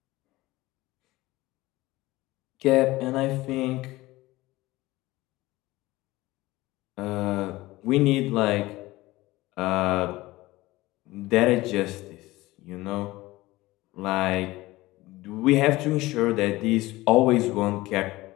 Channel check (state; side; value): quieter; right; 19.0 dB